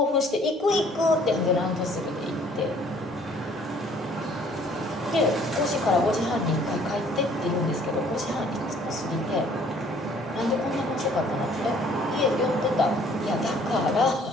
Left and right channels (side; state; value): both; normal; correlation 0.58